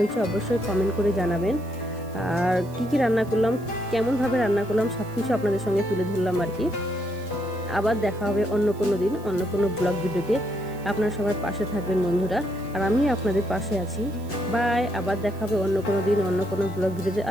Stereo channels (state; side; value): noise; right; hiss, 24 dB below the sound